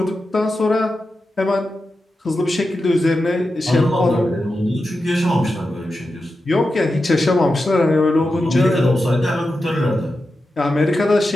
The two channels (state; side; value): normal; both; correlation 0.90